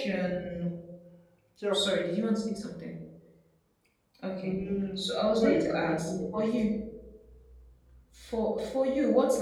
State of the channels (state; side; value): identical; both; correlation 1.00